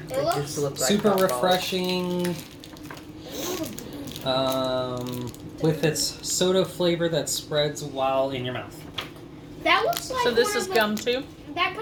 It It looks just looks like Super hot balls. refreshing. With its soda flavor that spreads while in your mouth. That looks like So this one is of the- gum too? That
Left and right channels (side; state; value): both; identical; correlation 1.00